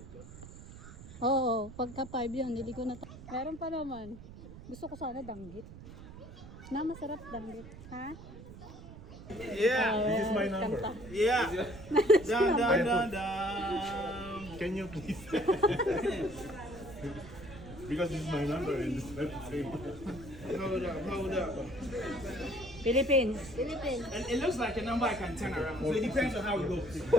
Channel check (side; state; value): right; noise; rumble, 15 dB below the sound